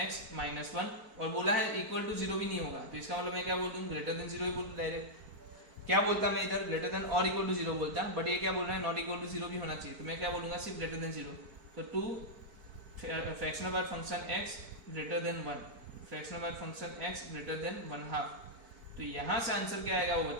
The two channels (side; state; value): left; late; 4.5 ms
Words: -1, और बोला है इक्वल टू 0 भी नहीं होगा, तो इसका मतलब मैं क्या बोल दूं? ग्रेटर देन 0 ही बोल दूं डायरेक्ट। क्या बोलता मैं इधर? ग्रेटर देन और इक्वल टू 0 बोलता, बट ये क्या बोल रहा है? नॉट इक्वल टू 0 भी होना चाहिए, तो मैं क्या बोलूंगा? सिर्फ ग्रेटर देन 0। तो 2 फ्रैक्शनल वाला function x greater than 1, fractional वाला फंक्शन x ग्रेटर देन 1/2। तो यहाँ से आंसर क्या आएगा वो